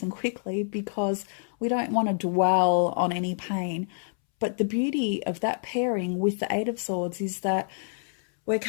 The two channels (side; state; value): right; silent; 60 dB below the other